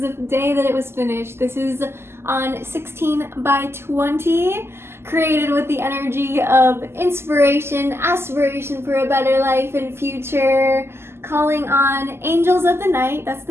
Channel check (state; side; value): late; left; 0.12 ms